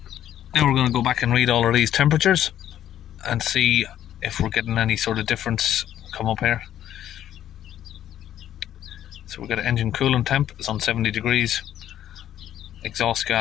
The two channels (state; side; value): quieter; right; 11.3 dB